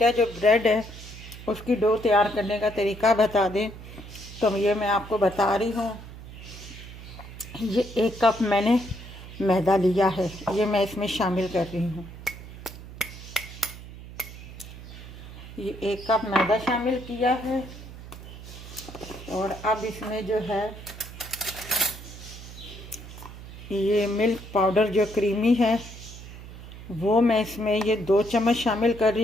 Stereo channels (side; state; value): right; noise; hum, 14 dB below the sound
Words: जो ब्रेड है उसकी डो तैयार करने का तरीका बता दें, तो ये मैं आपको बता रही हूँ। ये 1 कप मैंने मैदा लिया है, ये मैं इसमें शामिल कर रही हूँ। ये 1 कप मैदा शामिल किया है और अब इसमें जो है ये मिल्क पाउडर जो क्रीमी है वो मैं इसमें ये 2 चम्मच शामिल कर